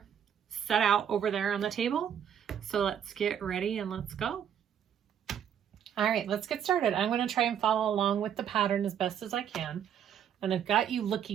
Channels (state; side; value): quieter; left; 9.0 dB